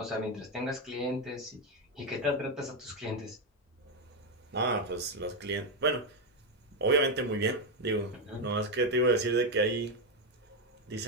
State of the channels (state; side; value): normal; both; correlation 0.06